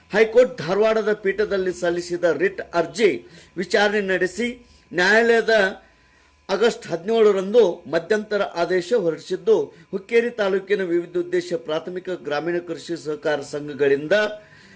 ಹೈಕೋರ್ಟ್ ಧಾರವಾಡದ ಪೀಠದಲ್ಲಿ ಸಲ್ಲಿಸಿದ ರಿಟ್ ಅರ್ಜಿ ವಿಚಾರಣೆ ನಡೆಸಿ ನ್ಯಾಯಾಲಯದ ಆಗಸ್ಟ್ 17 ಮಧ್ಯಂತರ ಆದೇಶ ಹೊರಡಿಸಿದ್ದು, ಹುಕ್ಕೇರಿ ತಾಲೂಕಿನ ವಿವಿಧೋದ್ದೇಶ ಪ್ರಾಥಮಿಕ ಗ್ರಾಮೀಣ ಕೃಷಿ ಸಹಕಾರ ಸಂಘಗಳಿಂದ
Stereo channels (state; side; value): identical; both; correlation 1.00